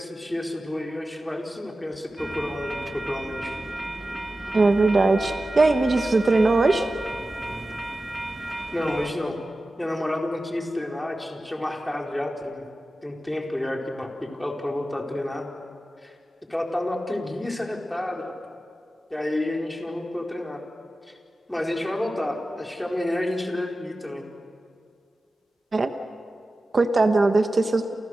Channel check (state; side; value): normal; both; correlation 0.94